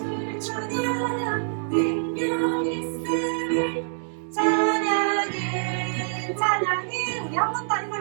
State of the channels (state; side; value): silent; left; digital silence